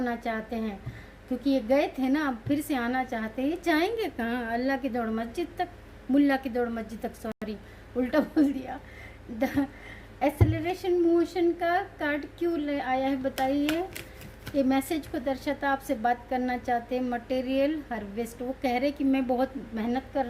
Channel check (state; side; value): identical; both; correlation 1.00